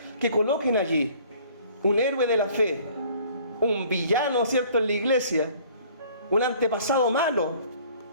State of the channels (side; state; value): both; inverted; correlation -0.54